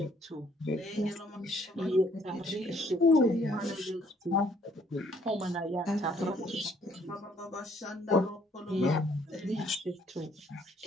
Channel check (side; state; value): both; normal; correlation 0.64